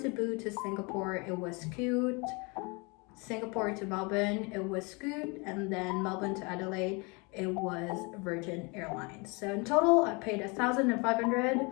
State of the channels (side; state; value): right; quieter; 29.6 dB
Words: to Singapore, it was Scoot. Singapore to Melbourne, it was Scoot, and then Melbourne to Adelaide, it was Virgin Airlines. So in total, I paid